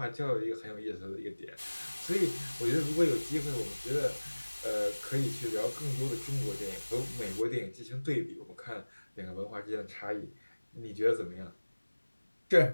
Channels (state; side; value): inverted; both; correlation -1.00